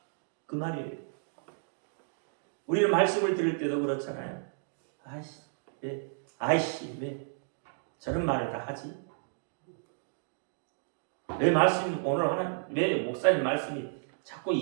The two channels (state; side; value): silent; left; digital silence